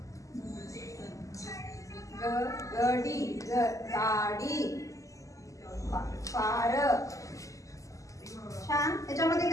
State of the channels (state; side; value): late; right; 0.16 ms